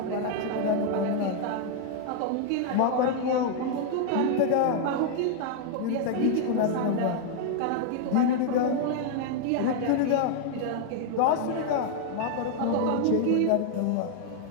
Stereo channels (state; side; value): different; both; correlation 0.00